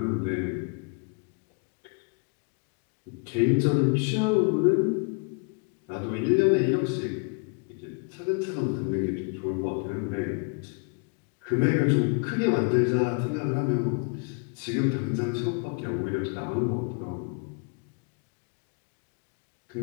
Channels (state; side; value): quieter; right; 36.6 dB